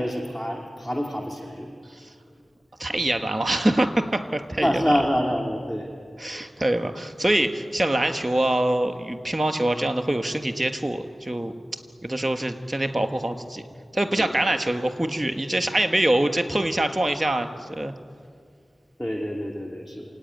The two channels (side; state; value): both; normal; correlation 0.96